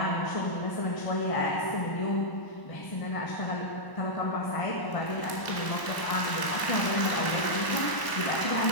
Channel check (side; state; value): right; late; 1.0 ms